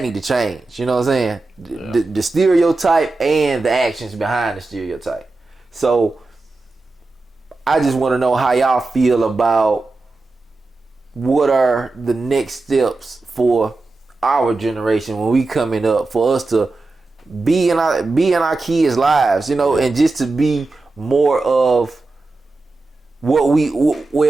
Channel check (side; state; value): left; quieter; 3.4 dB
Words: need to change. You know what I'm saying? The stereotype and the actions behind the stereotype. So I just want to know how y'all feel about what are the next steps for our generation when we coming up, for us to be in our kids' lives, you know, and just to be more of what